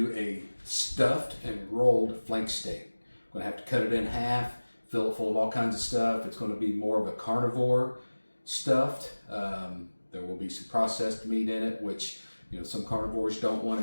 a stuffed and rolled flank steak. I'm going to have to cut it in half, fill it full of all kinds of stuff. It's going to be more of a carnivore stuffed. There will be some processed meat in it, which some carnivores don't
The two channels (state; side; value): inverted; both; correlation -1.00